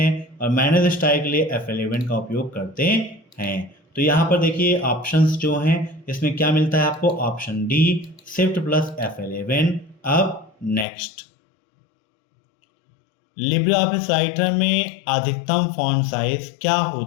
और मैनेज स्टाइल के लिए F11 का उपयोग करते हैं। तो यहाँ पर देखिए ऑप्शंस जो हैं इसमें क्या मिलता है आपको? Option D Shift+F11। अब नेक्स्ट, लिब्रे ऑफिस राइटर में अधिकतम फॉन्ट साइज क्या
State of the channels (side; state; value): right; drops out; at 10.9 s